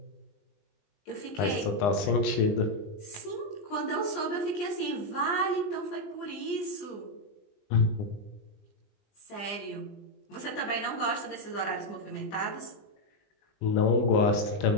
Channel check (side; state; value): right; late; 20 ms